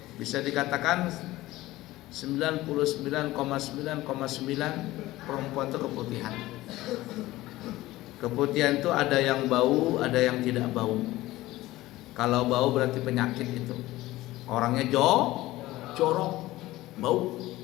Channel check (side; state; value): right; quieter; 17.4 dB